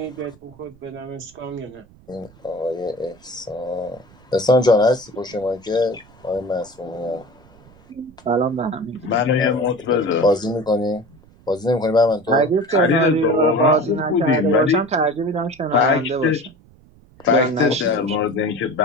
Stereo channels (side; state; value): right; noise; rumble, 26 dB below the sound